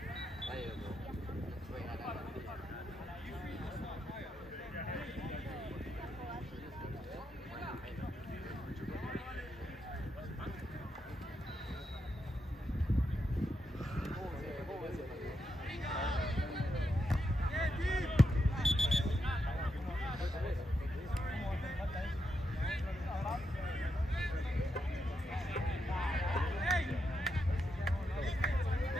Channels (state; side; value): normal; both; correlation 0.83